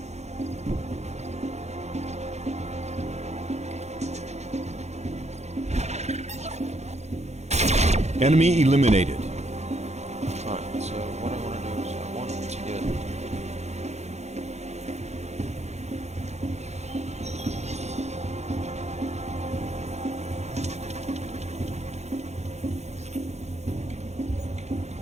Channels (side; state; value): left; late; 0.32 ms